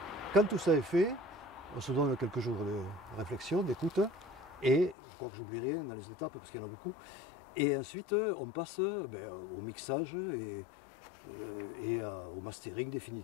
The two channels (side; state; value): right; drops out; at 5.0 s